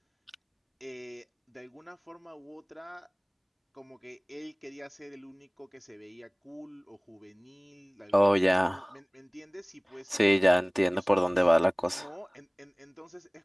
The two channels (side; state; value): both; identical; correlation 1.00